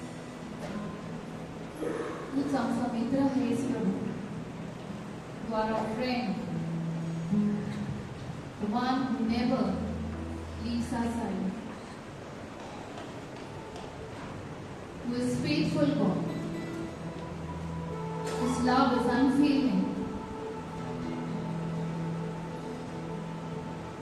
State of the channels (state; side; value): identical; both; correlation 1.00